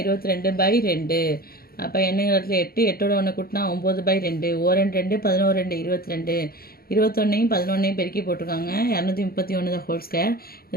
22/2. அப்போ என்னங்கிற இடத்துல 8, 8ஓட ஒன்று கூட்டினா 9/2. 2 11 22. 21ஐயும் 11ஐயும் பெருக்கி போட்டிருக்காங்க. 231 ஹோல் ஸ்கொயர்.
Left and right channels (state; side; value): late; right; 0.44 ms